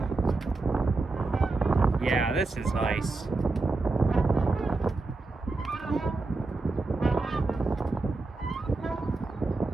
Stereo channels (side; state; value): left; quieter; 3.5 dB